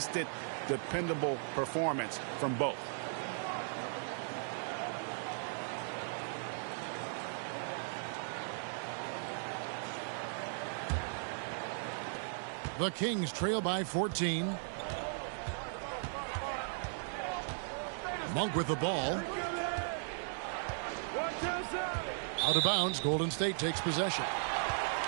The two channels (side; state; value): left; silent; digital silence